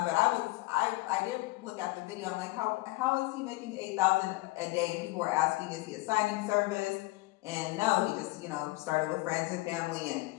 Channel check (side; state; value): right; quieter; 20.2 dB